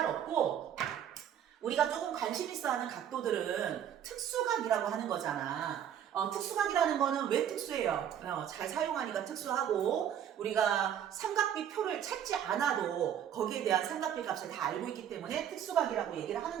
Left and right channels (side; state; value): left; quieter; 9.6 dB